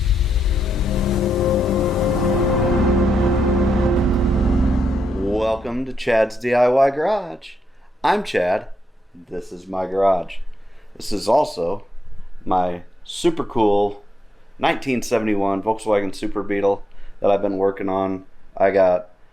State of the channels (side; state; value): both; normal; correlation 0.82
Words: Welcome to Chad's DIY Garage. I'm Chad. This is my garage. This is also my super cool 1971 Volkswagen Super Beetle that I've been working on. I got